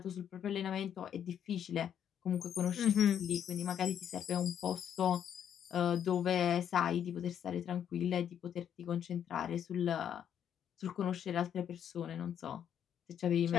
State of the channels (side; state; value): right; quieter; 9.2 dB